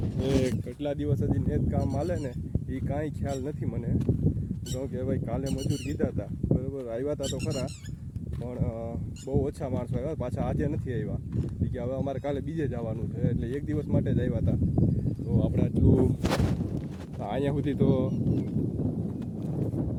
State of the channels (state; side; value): identical; both; correlation 1.00